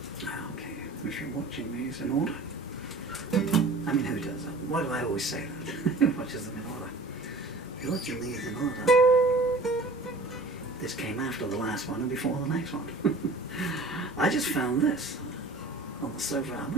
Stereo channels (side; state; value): left; quieter; 3.1 dB